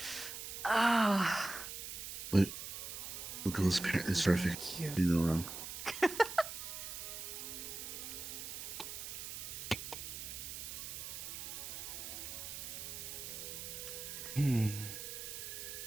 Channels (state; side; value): noise; right; hiss, 7 dB below the sound